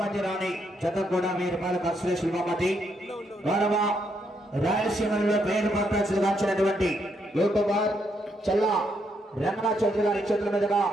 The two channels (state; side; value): normal; both; correlation 0.76